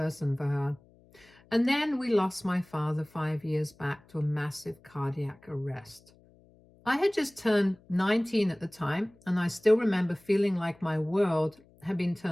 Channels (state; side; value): noise; left; hum, 28 dB below the sound